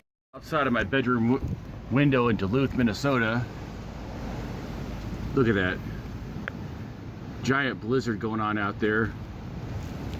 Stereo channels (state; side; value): identical; both; correlation 1.00